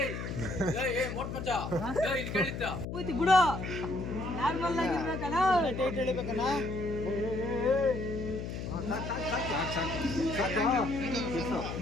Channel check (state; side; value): noise; left; hum, 6 dB below the sound